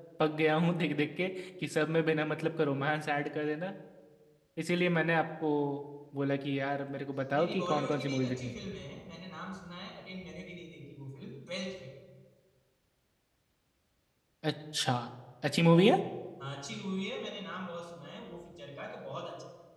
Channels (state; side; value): identical; both; correlation 1.00